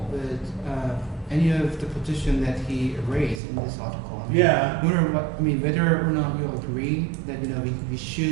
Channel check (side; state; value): left; drops out; at 3.4 s